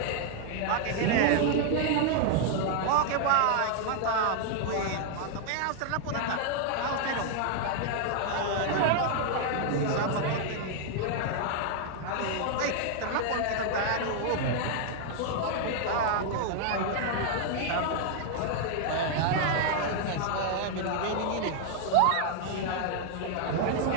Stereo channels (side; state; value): both; different; correlation 0.00